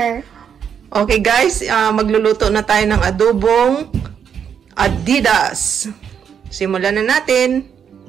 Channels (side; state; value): left; quieter; 7.8 dB